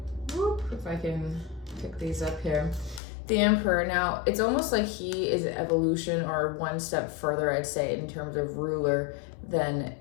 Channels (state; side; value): drops out; right; at 3.0 s